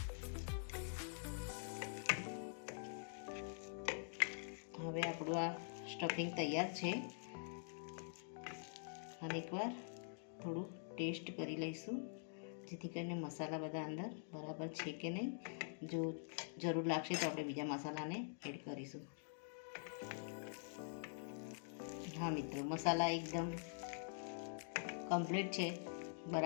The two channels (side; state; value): right; silent; digital silence